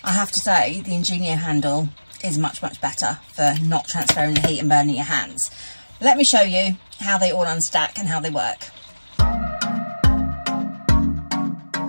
I have to say the Ingenio handle is much better for not transferring the heat and burning your hands. Let me show you how they all unstack and how they work.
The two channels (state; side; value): inverted; both; correlation -1.00